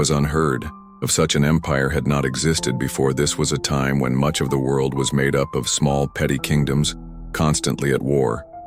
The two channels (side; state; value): both; identical; correlation 1.00